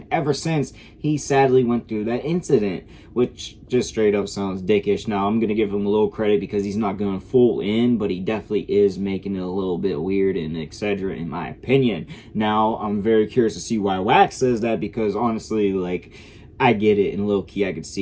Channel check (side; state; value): both; identical; correlation 1.00